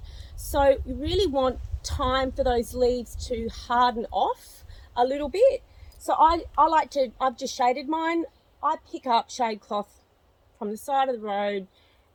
So you really want time for those leaves to harden off a little bit. So I've just shaded mine. I pick up shade cloth from the side of the road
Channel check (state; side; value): identical; both; correlation 1.00